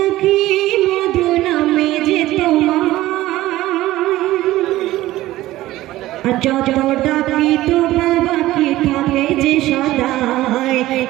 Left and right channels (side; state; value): left; quieter; 16.2 dB